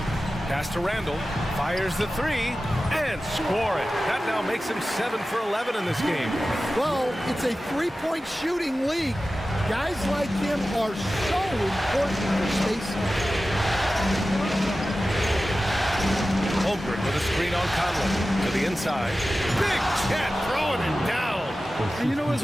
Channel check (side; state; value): both; normal; correlation 0.95